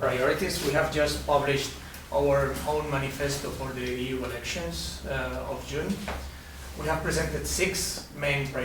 We have just published our own manifesto for the EU elections of June. We have presented 6 main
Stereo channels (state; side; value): identical; both; correlation 1.00